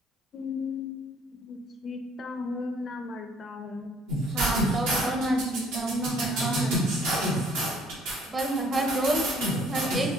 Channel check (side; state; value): both; normal; correlation 0.60